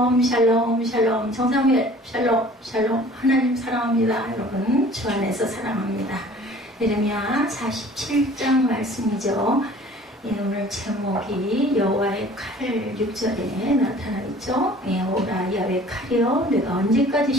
샬롬 샬롬 정사무엘 샬롬 샬롬 하나님 사랑합니다. 여러분 주 안에서 사랑합니다. 예레미야 47장 말씀이죠. 예, 오늘 제목이 여호와의 칼 6절에 나타나 있죠. 예, 오라 야훼 칼이여 내가 언제까지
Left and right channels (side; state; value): both; normal; correlation 0.49